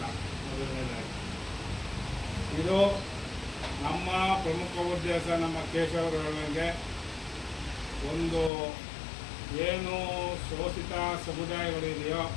ಮೊದಲನೇದಾಗಿ ಇದು ನಮ್ಮ ಪ್ರಮುಖ ಉದ್ದೇಶ, ನಮ್ಮ ಕೇಶವರೊಳಗೆ ಒಂದು ಏನು ಶೋಷಿತ ಸಮುದಾಯಗಳಿದೆಯೋ,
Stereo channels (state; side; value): drops out; right; at 8.5 s